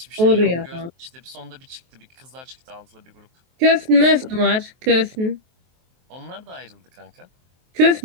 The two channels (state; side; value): late; left; 23 ms